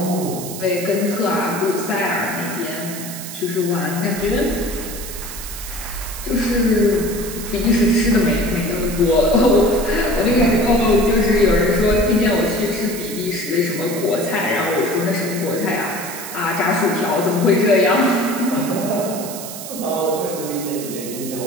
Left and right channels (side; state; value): right; noise; hiss, 10 dB below the sound